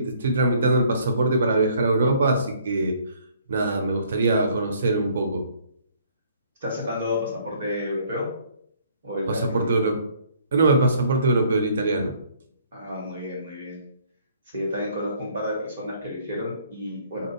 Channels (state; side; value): inverted; both; correlation -0.61